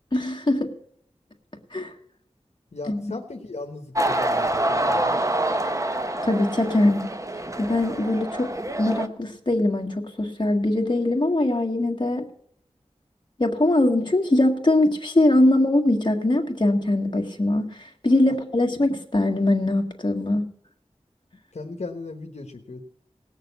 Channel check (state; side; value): normal; both; correlation 0.84